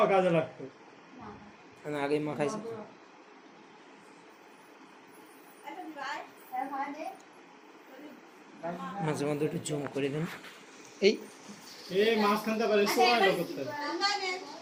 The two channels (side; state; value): both; identical; correlation 1.00